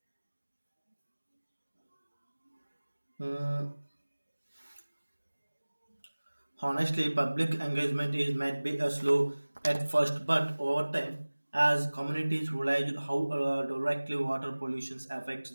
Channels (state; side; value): inverted; both; correlation -1.00